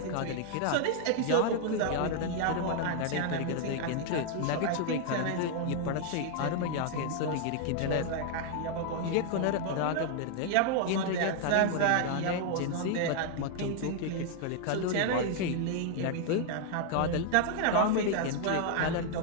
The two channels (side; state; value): both; different; correlation 0.00